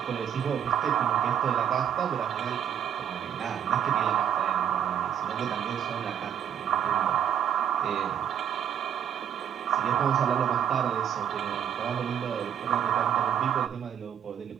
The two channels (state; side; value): quieter; left; 9.2 dB